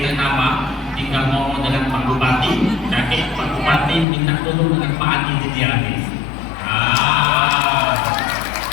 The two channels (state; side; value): drops out; right; at 4.0 s